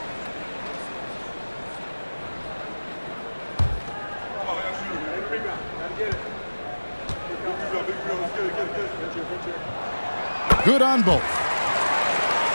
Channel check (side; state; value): both; inverted; correlation -1.00